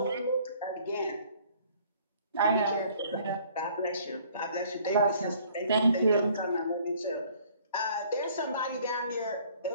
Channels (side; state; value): both; inverted; correlation -0.57